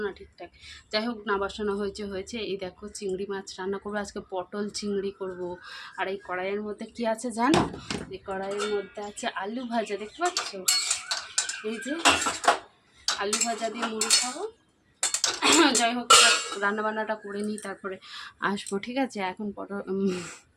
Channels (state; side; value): identical; both; correlation 1.00